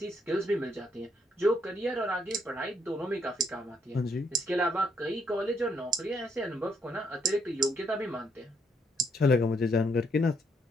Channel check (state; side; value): normal; both; correlation 0.73